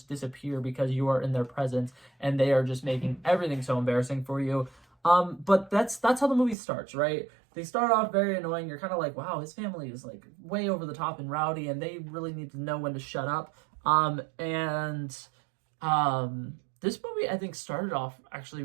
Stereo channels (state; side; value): drops out; left; at 6.6 s